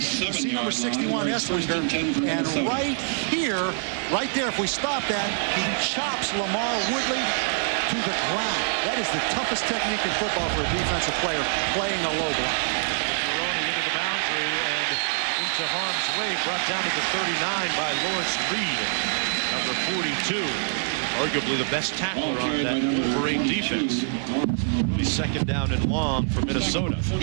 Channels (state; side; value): silent; left; 61 dB below the other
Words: see number 61, Esslinger, and right here, right there, if we stop that, he chops Lamar Woodley to the ground. That is the toughest technique in football for a defensive player, playing a low block. With Maroney into the boundary and into harm's way, brought down to the 39 by Lawrence Reed, number 42, arguably the best tackler on that Wolverine defense. It'll be 2nd down and long for Minnesota.